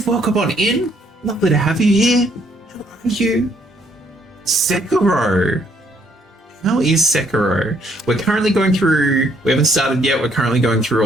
welcome on in. Lovely to have you here. How are you? Sekiro. How is Sekiro? We're currently going through, we haven't started yet, we're currently going through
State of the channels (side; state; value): both; normal; correlation 0.68